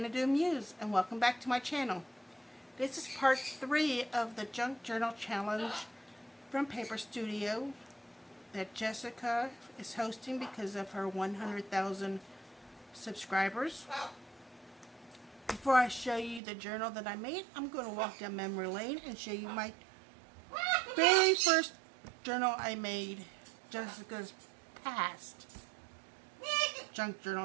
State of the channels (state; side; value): drops out; left; at 16.4 s